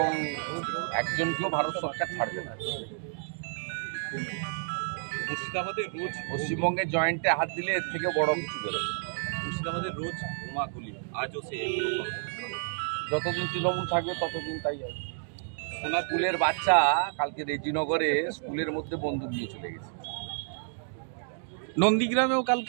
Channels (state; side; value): silent; left; digital silence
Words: একজনকেও ভারত সরকার ছাড়বে না। মুর্শিদাবাদে রোজ পশ্চিমবঙ্গের জয়েন্টে হাত দিলে এর থেকে বড় কিছু বেরোবে। মুর্শিদাবাদে রোজ বোমাগুলি, আজও সে যতদিন তৃণমূল থাকবে ততদিন তাই হবে। সোনার স্কুলের বাচ্চা কালকে রেজিনগরে স্কুলের মধ্যে বন্দুক নিয়ে চলে গেছে। নন্দীগ্রামেও